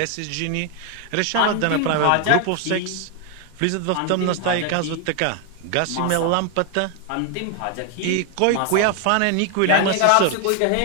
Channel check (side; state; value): both; different; correlation 0.01